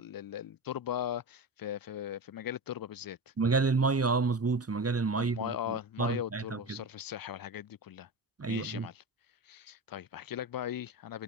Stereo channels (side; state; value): both; normal; correlation 0.24